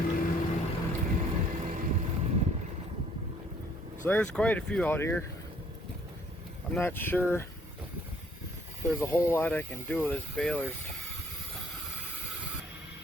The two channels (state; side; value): normal; both; correlation 0.61